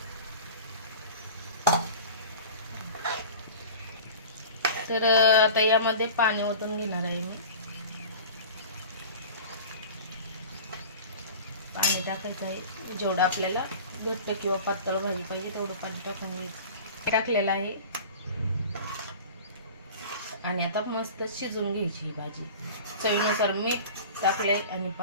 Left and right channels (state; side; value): inverted; both; correlation -0.38